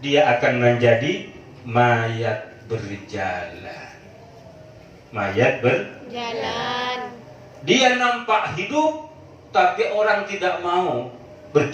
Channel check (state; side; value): identical; both; correlation 1.00